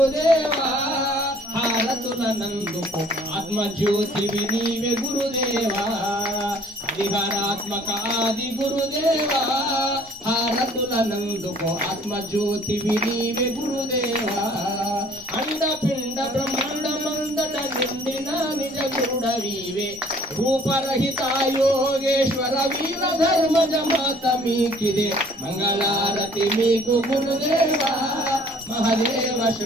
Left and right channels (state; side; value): normal; both; correlation 0.56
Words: హారతుల నందుకు ఆత్మజ్యోతివి నీవే గురుదేవా హరిహరాత్మక ఆది గురుదేవా హారతుల నందుకు ఆత్మజ్యోతివి నీవే గురుదేవా అండపిండ బ్రహ్మాండ మందట నిండిన నిజ గురుడవీవే రూపరహిత యోగేశ్వర వీర ధర్మజ మాత మీకిదే మంగళారతి మీకు గురుదేవా మహదేవ